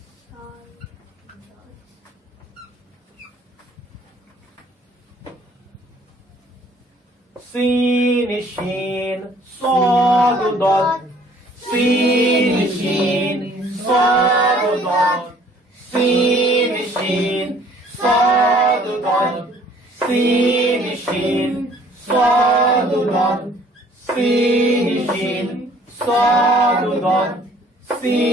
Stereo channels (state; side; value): normal; both; correlation 0.57